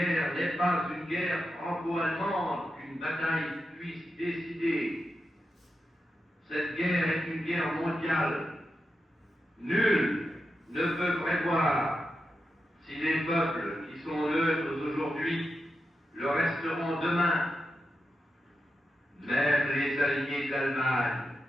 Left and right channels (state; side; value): normal; both; correlation 0.88